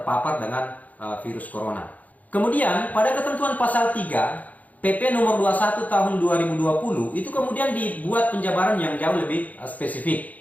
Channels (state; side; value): late; right; 0.076 ms